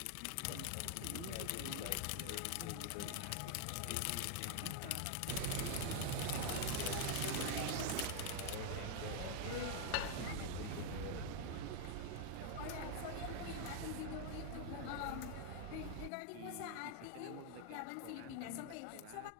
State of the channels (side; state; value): both; different; correlation 0.01